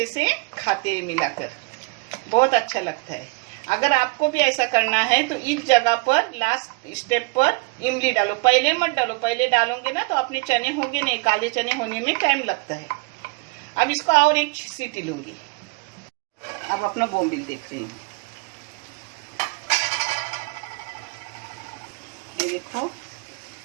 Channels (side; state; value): left; quieter; 29.0 dB